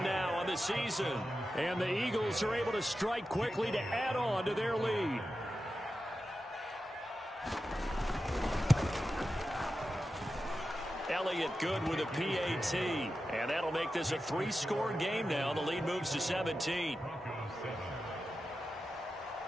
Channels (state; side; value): normal; both; correlation 0.91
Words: now on the season. And the Eagles are able to strike quickly to add on to their lead. Elliott good with a PAT. And that'll make this a 3-score game now. The lead moves to 17.